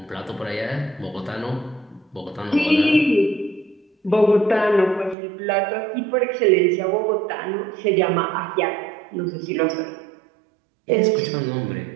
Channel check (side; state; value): left; drops out; at 5.2 s